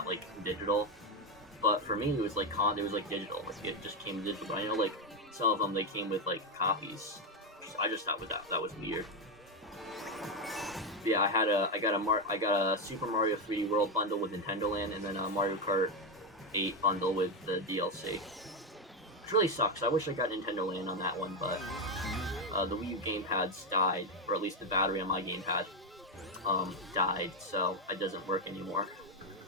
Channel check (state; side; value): normal; both; correlation 0.09